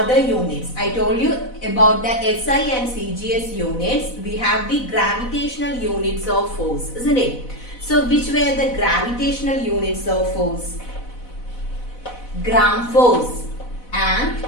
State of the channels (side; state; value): right; late; 4.0 ms